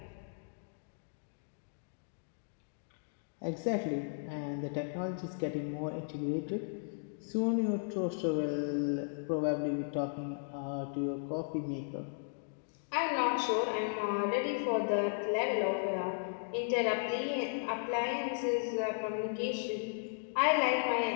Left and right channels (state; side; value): silent; right; digital silence